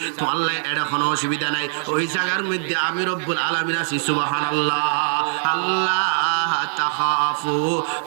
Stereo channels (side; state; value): left; silent; digital silence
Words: তো আল্লাহ এটা কোনো অসুবিধা নাই ওই জায়গার মধ্যে আমি রব্বুল আলামিন আছি সুবহানাল্লাহ আল্লাহ তাখাফু